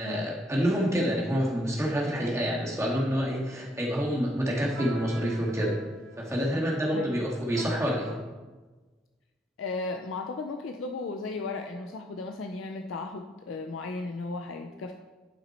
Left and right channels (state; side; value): normal; both; correlation 0.72